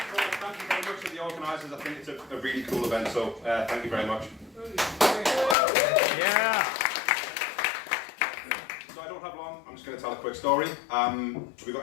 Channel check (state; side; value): drops out; right; at 5.6 s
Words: Thank you very much to the organisers. I think it's a really cool event, so thank you very much. Yeah. So I don't have long. I'm just going to tell a quick story. Have we